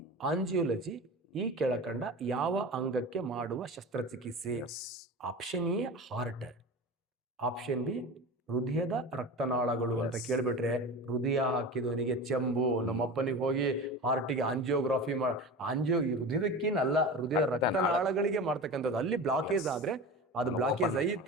ಆಂಜಿಯೋಲಜಿ ಈ ಕೆಳಕಂಡ ಯಾವ ಅಂಗಕ್ಕೆ ಮಾಡುವ ಶಸ್ತ್ರಚಿಕಿತ್ಸೆ? Option A heart, option B ಹೃದಯದ ರಕ್ತನಾಳಗಳು ಅಂತ ಕೇಳ್ಬಿಟ್ರೆ ಹೃದಯ ಹಾಕಿದವನಿಗೆ ಚೆಂಬು. ನಮ್ಮಪ್ಪನಿಗೆ ಹೋಗಿ ಹಾರ್ಟಿಗೆ ಆಂಜಿಯೋಗ್ರಾಫಿ ಈ ಹೃದಯದಕ್ಕೇನಲ್ಲ, ಹೃದಯದ ರಕ್ತನಾಳಗಳಿಗೆ ಮಾಡ್ತಕ್ಕಂಥದ್ದು. ಅಲ್ಲಿ ಬ್ಲಾಕೇಜ್ ಆದ್ರೆ ಅದು ಬ್ಲಾಕೇಜ್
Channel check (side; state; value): both; normal; correlation 0.30